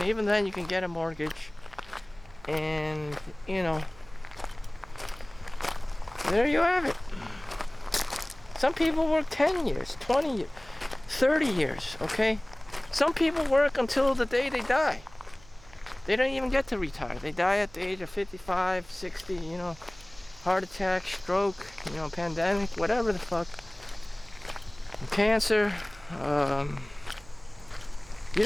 even then you can get a mortgage. And, there you have it. Some people work 10 years, 20 years. 30 years, okay? Some people work until the day they die. They don't even get to retire. They die at the age of 55, 60, heart attack, stroke, pandemic, whatever the fuck. Cancer. You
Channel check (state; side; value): noise; right; hum, 23 dB below the sound